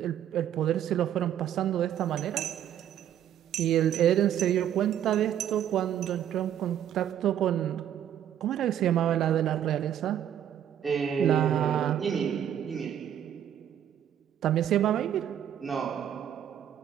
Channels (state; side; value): quieter; left; 10.2 dB